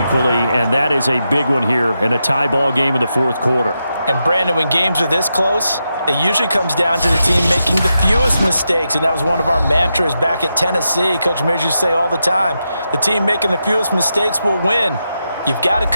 and that is a big one here in a tie ball game in the fourth quarter. And, Brandon, when games are this close, it usually comes down to the team making the fewest mistakes, and that was one of our mantras back at Tennessee. Coach Mears used to say all the time, the team making the fewest mistakes will win. You've got to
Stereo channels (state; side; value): inverted; both; correlation -0.87